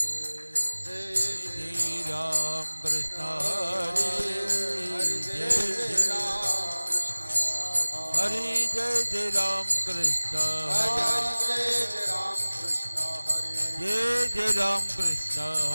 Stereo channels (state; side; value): inverted; both; correlation -1.00